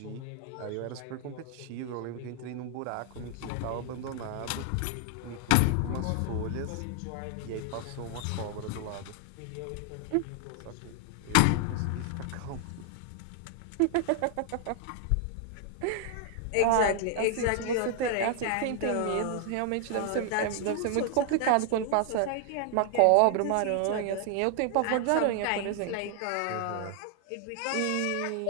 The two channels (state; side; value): different; both; correlation 0.00